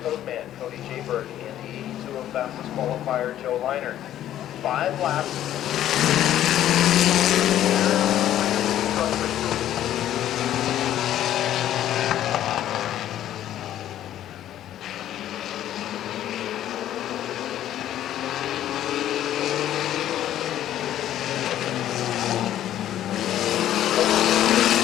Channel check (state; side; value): quieter; right; 12.0 dB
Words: Codeman, Cody Jaybird, and the 82 of fastest qualifier, Joe Liner. 5 laps.